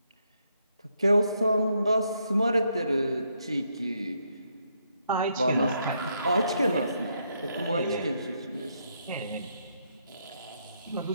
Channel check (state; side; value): inverted; both; correlation -0.76